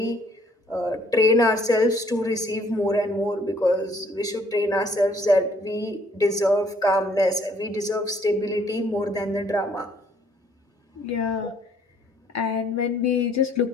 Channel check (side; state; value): both; normal; correlation 0.62